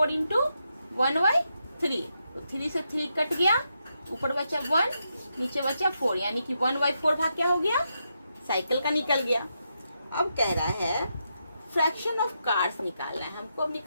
इंटू 1/3। तो 3 से 3 कट गया, ऊपर बचा 1 नीचे बचा 4, यानी कि 1/4 भाग क्या हो गया साइकिल का निकल गया। अब कह रहा है फ्रैक्शन ऑफ कार्स निकालना है हमको। अब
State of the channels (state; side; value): inverted; both; correlation -0.83